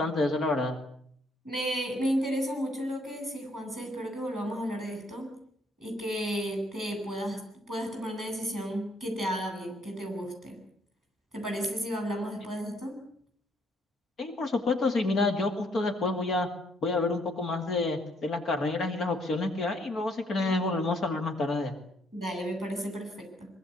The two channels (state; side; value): normal; both; correlation 0.68